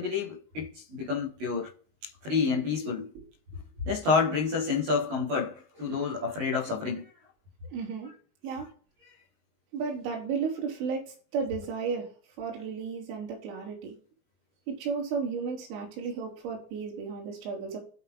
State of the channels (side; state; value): left; late; 19 ms